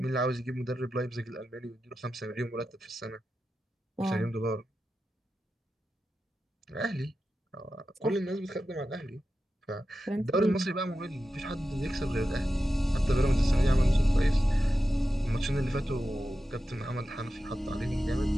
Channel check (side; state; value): both; normal; correlation 0.91